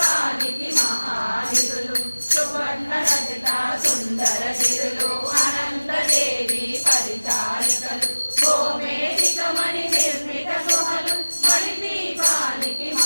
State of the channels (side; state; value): both; inverted; correlation -1.00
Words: మహానిధులు సువర్ణ రచిత సుందర గిరులు అనంతదేవి పరిచారికలు గోమేధికమణి నిర్మిత గుహలు మణిదీపానికి